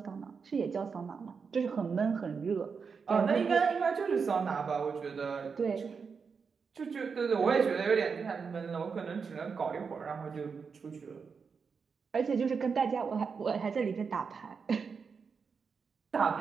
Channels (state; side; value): quieter; left; 5.6 dB